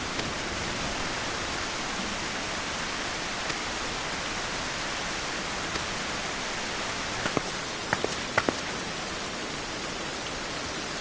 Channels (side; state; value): both; identical; correlation 1.00